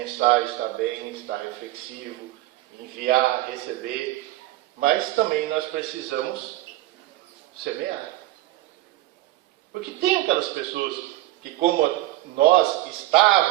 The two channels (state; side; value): quieter; left; 16.7 dB